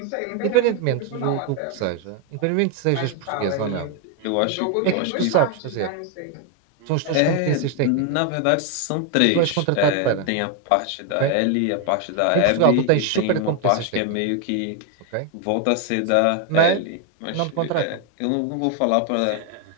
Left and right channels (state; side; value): different; both; correlation 0.01